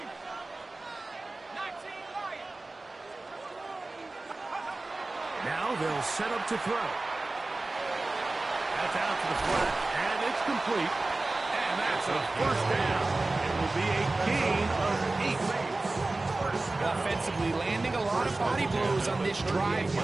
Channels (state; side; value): quieter; left; 3.1 dB